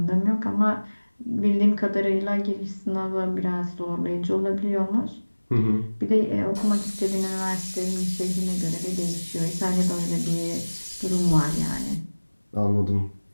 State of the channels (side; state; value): both; inverted; correlation -1.00